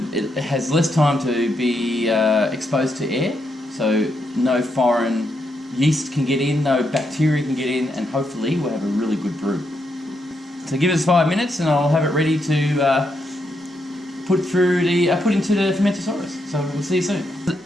has less time to be exposed to air, so no foreign yeast can get in, no bacteria can get in, and hopefully we'll have a really good brew. So give us 5 minutes and I'll have it ready to put into the fermentosaurus. So we'll see you soon.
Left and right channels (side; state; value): both; normal; correlation 0.80